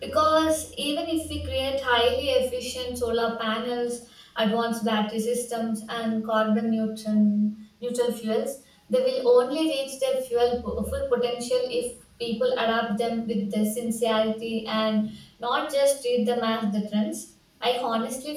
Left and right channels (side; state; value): both; identical; correlation 1.00